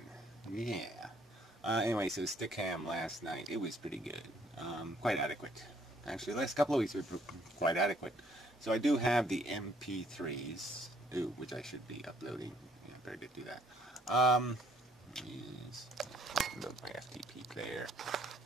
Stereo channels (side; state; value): both; normal; correlation 0.64